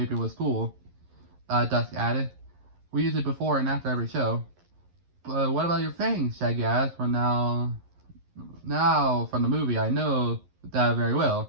was cool, Dusk added. We use it before and after every show. But what about your fangs? Shaggy asked. Now from the movie, I know that very well.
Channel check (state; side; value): late; left; 11 ms